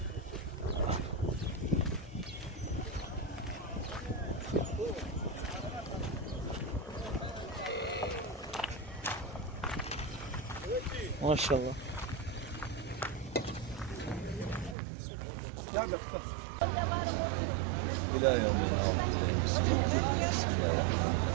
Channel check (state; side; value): drops out; left; at 14.8 s